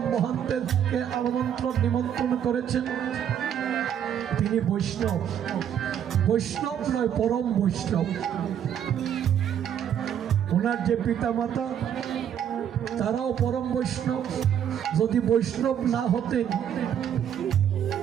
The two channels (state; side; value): quieter; left; 9.3 dB